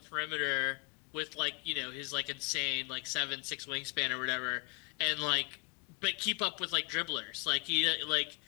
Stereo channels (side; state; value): right; quieter; 31.5 dB